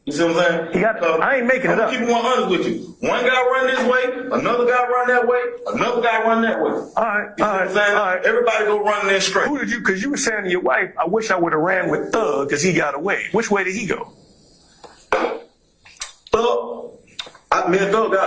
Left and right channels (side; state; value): both; identical; correlation 1.00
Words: You see what I'm saying? He got. I ain't making it I'm up. keep it 100 with you. One guy run this way, another guy run that way, another guy run that way. All right. You see what I'm saying? All right. Everybody go running there straight. Who did you? Because you were saying to your wife, "I wish I would have ran with Thug because he got away." Which way did he go? Me and Thug